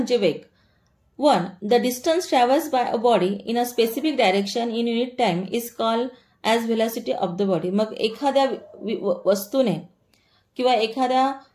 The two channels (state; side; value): identical; both; correlation 1.00